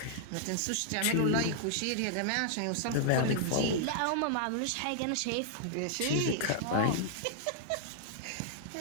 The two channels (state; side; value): different; both; correlation -0.01